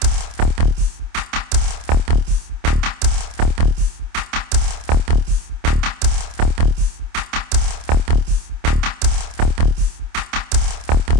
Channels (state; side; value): late; left; 27 ms